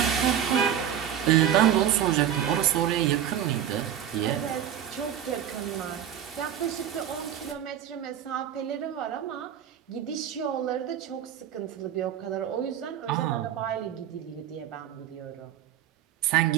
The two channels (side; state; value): left; quieter; 10.0 dB